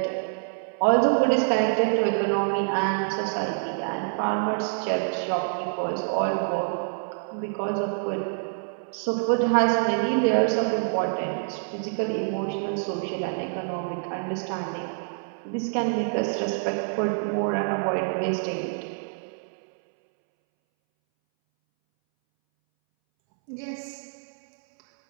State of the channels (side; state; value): left; silent; 61 dB below the other